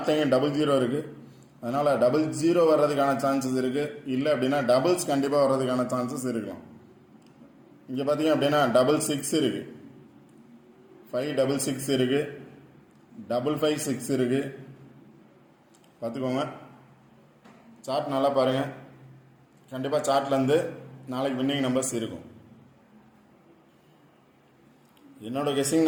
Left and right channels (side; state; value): both; identical; correlation 1.00